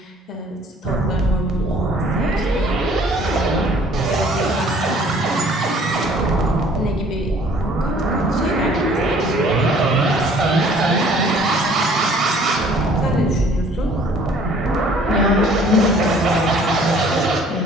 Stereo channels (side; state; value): both; normal; correlation 0.55